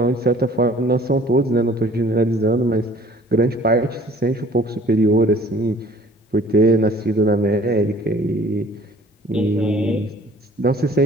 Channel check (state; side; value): normal; both; correlation 0.52